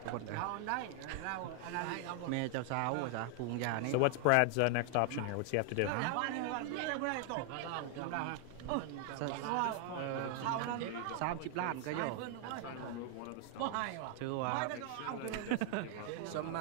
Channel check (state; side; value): different; both; correlation 0.00